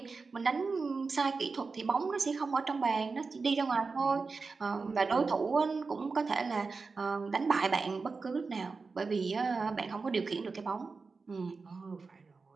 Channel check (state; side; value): quieter; left; 4.4 dB